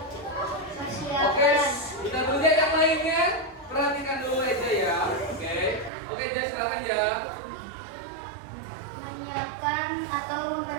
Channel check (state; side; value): drops out; left; at 5.9 s